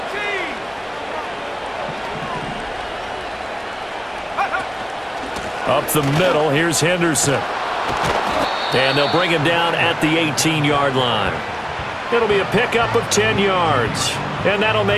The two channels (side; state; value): both; identical; correlation 1.00